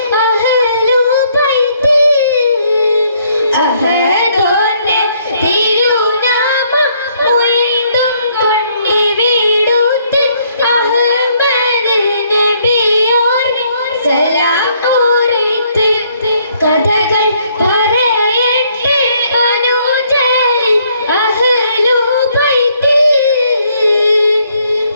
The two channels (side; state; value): both; inverted; correlation -0.68